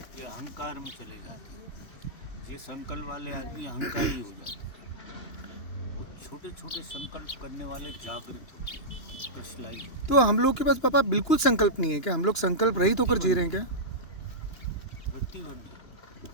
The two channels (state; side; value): late; right; 2.9 ms